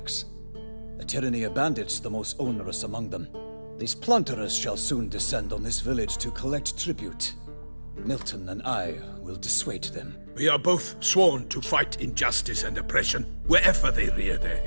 The tyranny of bandits the most onerous among them. These plunderers shall soon descend on this village to collect tribute. Milton and I will dissuade them. We are both sworn to fight injustice and oppression wherever they rear their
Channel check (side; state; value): both; inverted; correlation -1.00